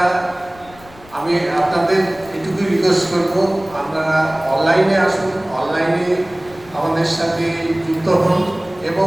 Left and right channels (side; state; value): left; noise; rumble, 23 dB below the sound